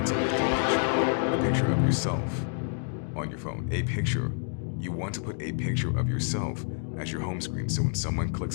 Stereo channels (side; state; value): right; silent; 57 dB below the other